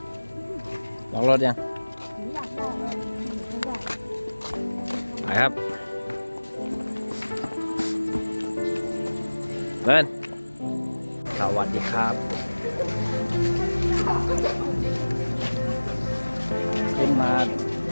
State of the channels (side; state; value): both; inverted; correlation -1.00